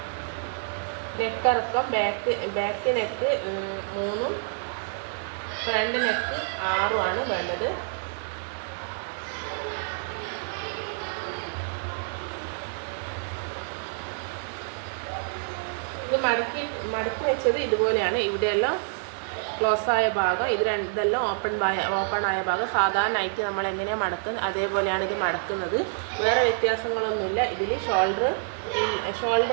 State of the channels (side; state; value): left; silent; 60 dB below the other